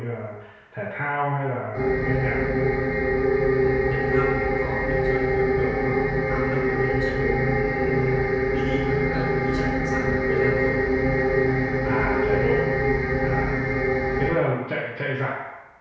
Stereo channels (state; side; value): identical; both; correlation 1.00